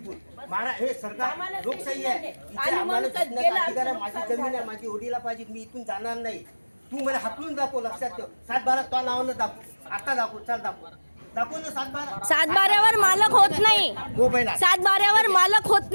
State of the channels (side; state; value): both; inverted; correlation -1.00